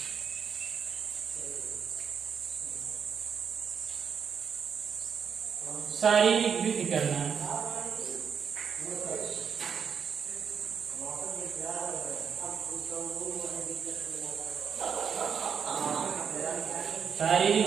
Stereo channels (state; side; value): quieter; left; 6.9 dB